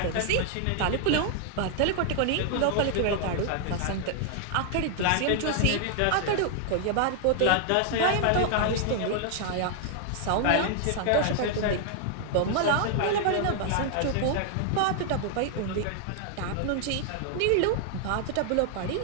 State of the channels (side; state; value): both; different; correlation 0.00